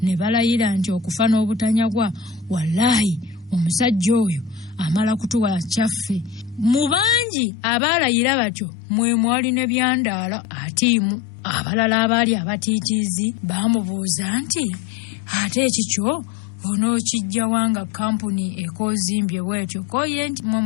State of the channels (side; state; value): right; drops out; at 7.2 s